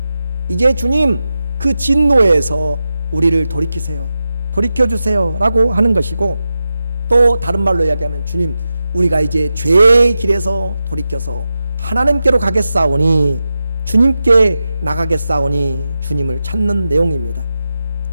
이제 주님 그 진노에서 우리를 돌이키세요, 돌이켜주세요 라고 하는 것이고, 또 다른 말로 이야기하면 주님 우리가 이제 죄의 길에서 돌이켜서 하나님께로 가겠사오니 주님께 나가겠사오니 주님을 찾는 내용입니다.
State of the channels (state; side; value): inverted; both; correlation -0.91